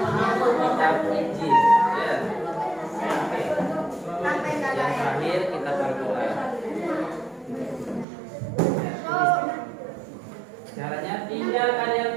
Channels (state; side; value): drops out; left; at 8.1 s